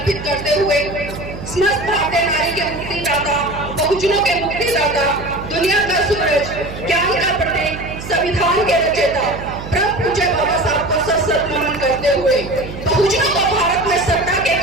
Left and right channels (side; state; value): right; noise; hum, 11 dB below the sound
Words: करते हुए समस्त भारतीय नारी के मुक्तिदाता, बहुजनों के मुक्तिदाता, दुनिया का सूरज, ज्ञान का प्रतीक, संविधान के रचयिता परम पूज्य बाबा साहब को सशक्त नमन करते हुए बहुजनों को भारत में सत्ता के